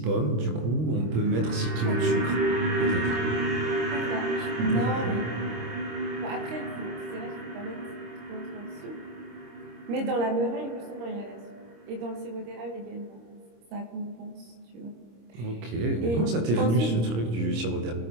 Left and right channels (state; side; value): late; left; 26 ms